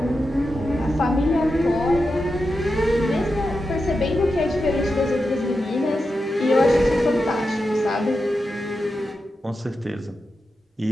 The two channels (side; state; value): both; normal; correlation 0.89